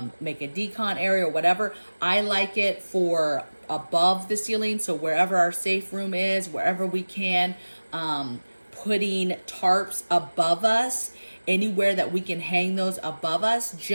make a decon area or whatever. I like it for above the ceiling, so wherever our safe room is, wherever we can, putting tarps above us, anywhere that we can hang those above us,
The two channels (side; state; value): both; inverted; correlation -1.00